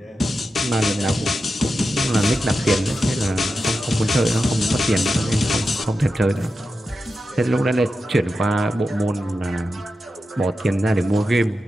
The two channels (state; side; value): normal; both; correlation 0.90